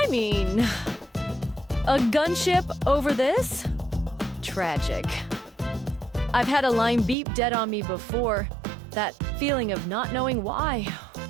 mean, a gunship over this? Tragic. I've had a line beep dead on me before. That feeling of not knowing why.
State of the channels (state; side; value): drops out; left; at 7.2 s